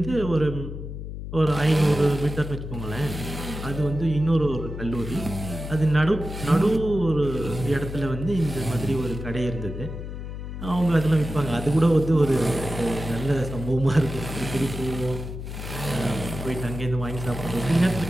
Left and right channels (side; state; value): left; noise; hum, 8 dB below the sound